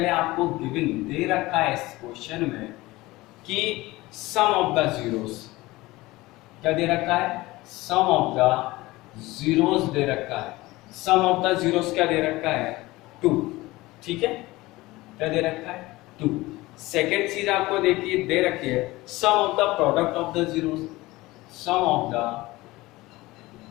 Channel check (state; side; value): quieter; right; 19.7 dB